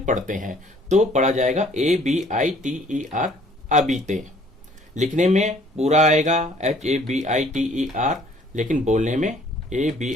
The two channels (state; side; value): normal; both; correlation 0.58